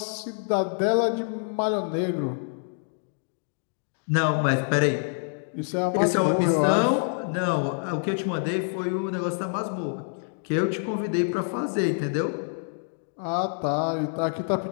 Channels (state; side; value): silent; right; digital silence